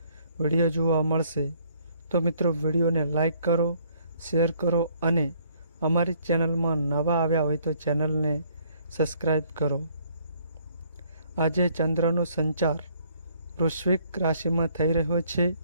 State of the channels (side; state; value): both; inverted; correlation -0.64